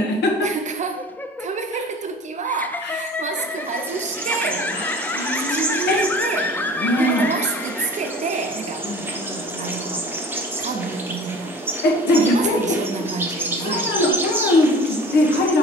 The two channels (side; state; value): both; normal; correlation 0.43